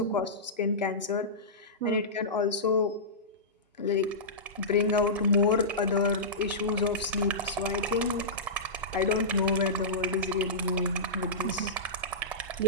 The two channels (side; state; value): both; normal; correlation -0.17